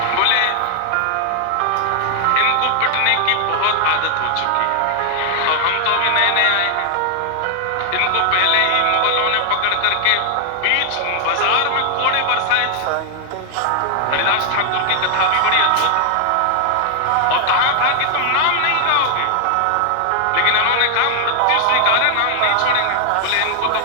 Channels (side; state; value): both; different; correlation 0.00